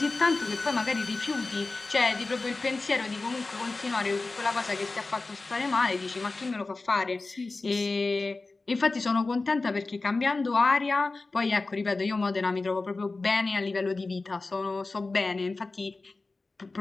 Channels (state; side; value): quieter; right; 3.5 dB